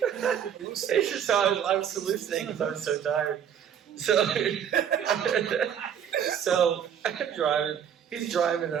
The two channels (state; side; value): quieter; left; 8.6 dB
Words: It's just how I was hallucinating because I was so tired. So I'm driving. He's driving and